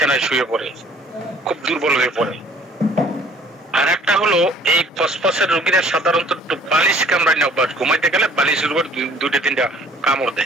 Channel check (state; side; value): normal; both; correlation 0.55